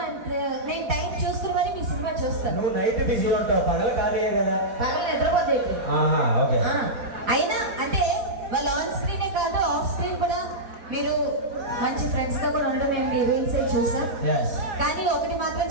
అంటే నేను టైం చూసుకుని మరి మీ సినిమా చూస్తాను. నువ్వు నైట్ బిజీ ఉంటావు, పగలు ఖాళీయే కదా. పగలు నిద్రపోతే ఓకే. అయినా అంటే వాళ్ళ ఆన్ స్క్రీనే కాదు ఆఫ్ స్క్రీన్ కూడా మీరు మంచి ఫ్రెండ్స్ గా కూడా ఉండడం మేము మీ రీల్స్ చూసాం. కానీ ఒకటి మాత్రం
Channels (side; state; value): left; late; 4.2 ms